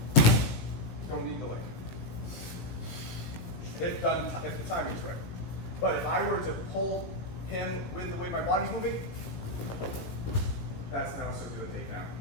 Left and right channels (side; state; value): right; late; 18 ms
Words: Don't need the leg. If the timing's right. But if I were to pull him with the way my body's moving, that's now a circular takedown,